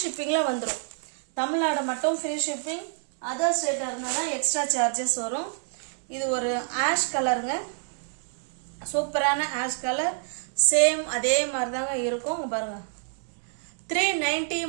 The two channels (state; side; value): silent; left; 59 dB below the other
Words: ஷிப்பிங்கில் வந்துடும். தமிழ்நாடு மட்டும் ஃப்ரீ ஷிப்பிங். அதர் ஸ்டேட்டாக இருந்ததுன்னா எக்ஸ்ட்ரா சார்ஜஸ் வரும். இது ஒரு ஆஷ் கலருங்க, சூப்பரான ஆஷ் கலர். சேம் அதே மாதிரி தாங்க இருக்கும் பாருங்க. 390